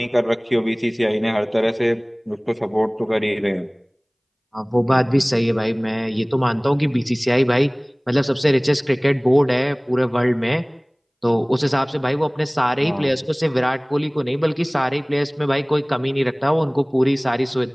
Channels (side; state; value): both; identical; correlation 1.00